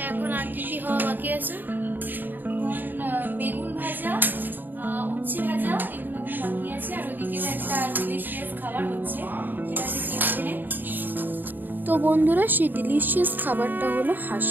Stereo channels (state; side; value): late; left; 0.090 ms